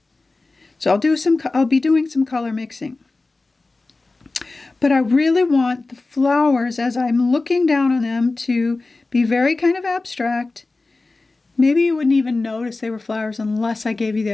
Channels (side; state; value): right; quieter; 3.4 dB